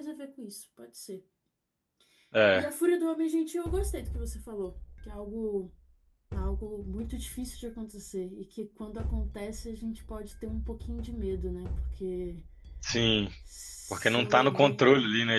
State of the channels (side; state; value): both; identical; correlation 1.00